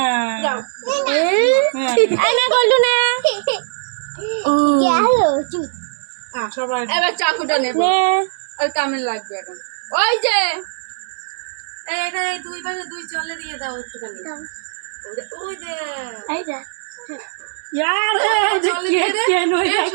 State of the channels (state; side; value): silent; left; digital silence